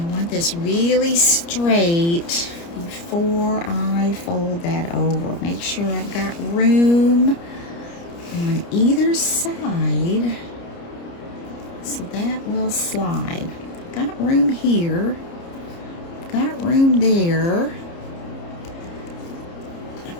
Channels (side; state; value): right; late; 29 ms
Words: want this really straight before I fold that over. Make sure I've got room on either side so that will slide. Got room here. Got room there.